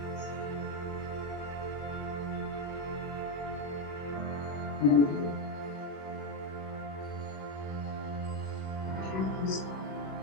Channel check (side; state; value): right; late; 21 ms